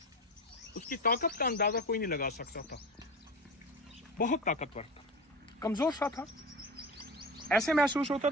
उसकी ताकत का अंदाज़ा कोई नहीं लगा सकता था, बहुत ताकतवर था, कमज़ोर सा था। ऐसे महसूस होता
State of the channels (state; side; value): normal; both; correlation 0.27